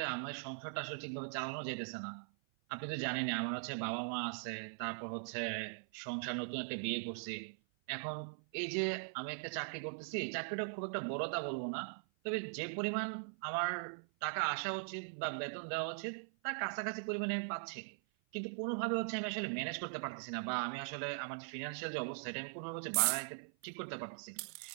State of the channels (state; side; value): silent; left; 50 dB below the other